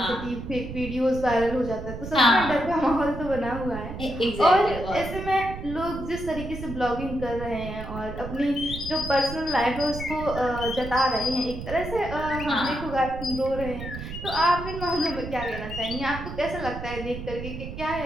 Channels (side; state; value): right; noise; rumble, 9 dB below the sound